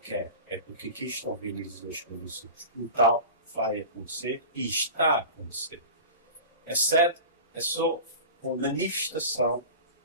é porque aqui estão reunidas as condições. O tal vai acontecer e está a acontecer. A sede é só uma manifestação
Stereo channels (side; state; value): both; inverted; correlation -0.33